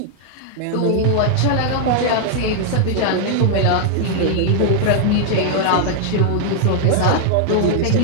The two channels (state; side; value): different; both; correlation 0.00